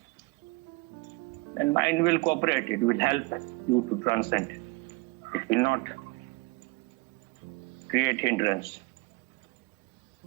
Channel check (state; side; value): quieter; left; 25.4 dB